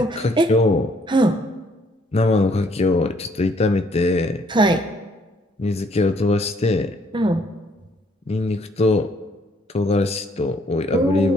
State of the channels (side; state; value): both; normal; correlation 0.66